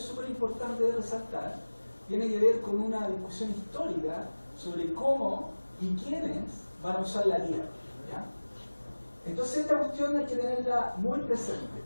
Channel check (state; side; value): inverted; both; correlation -1.00